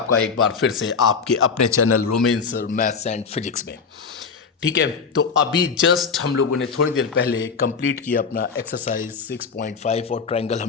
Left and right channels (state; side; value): quieter; right; 5.5 dB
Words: एक बार फिर से आपके अपने channel romance maths and physics में। ठीक है, तो अभी जस्ट हम लोगों ने थोड़ी देर पहले कंप्लीट किया अपना एक्सरसाइज 6.5 और ट्रायंगल